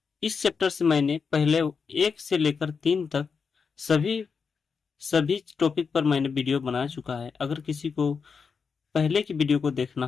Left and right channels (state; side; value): quieter; right; 5.6 dB